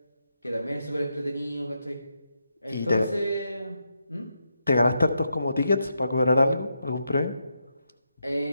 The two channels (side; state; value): both; inverted; correlation -0.83